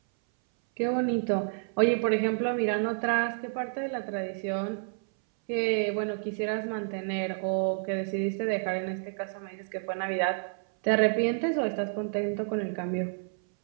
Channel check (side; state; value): left; silent; 58 dB below the other